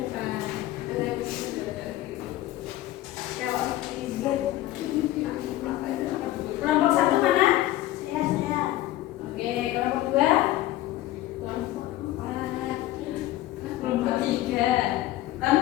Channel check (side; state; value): right; quieter; 15.4 dB